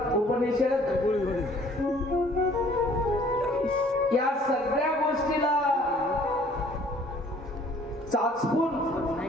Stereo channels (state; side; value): normal; both; correlation 0.56